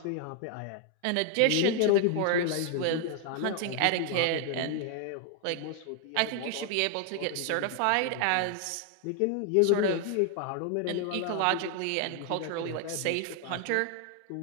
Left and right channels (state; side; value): different; both; correlation 0.00